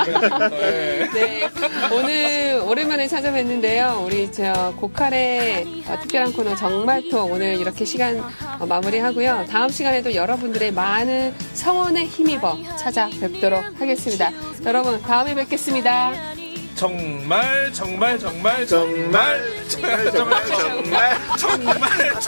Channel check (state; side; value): inverted; both; correlation -1.00